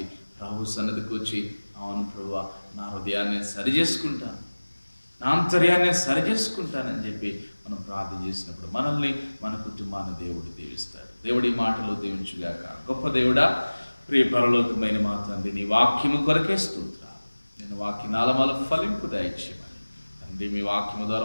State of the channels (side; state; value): both; inverted; correlation -1.00